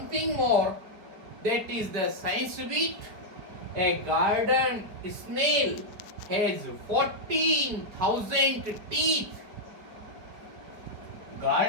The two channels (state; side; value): late; left; 4.7 ms